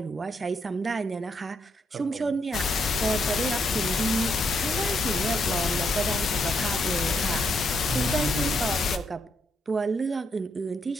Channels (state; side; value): normal; both; correlation 0.77